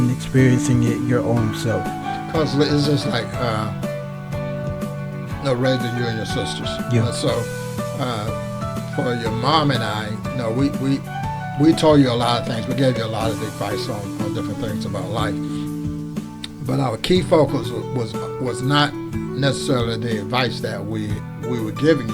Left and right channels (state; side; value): identical; both; correlation 1.00